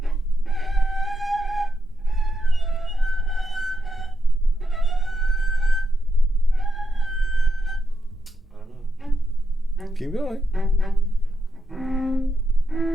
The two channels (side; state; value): both; normal; correlation 0.84